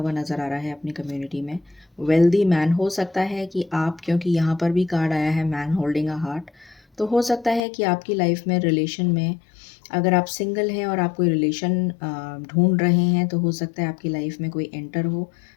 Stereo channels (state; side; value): drops out; right; at 7.6 s